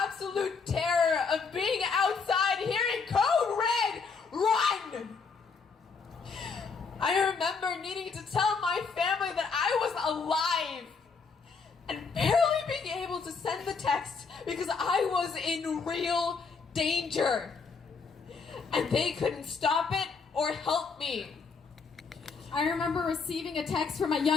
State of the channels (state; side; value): quieter; right; 5.0 dB